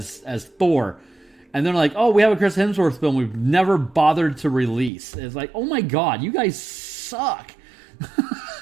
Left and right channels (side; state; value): left; drops out; at 4.9 s